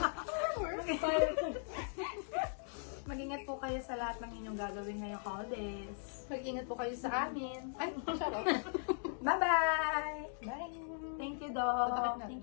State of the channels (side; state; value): right; silent; digital silence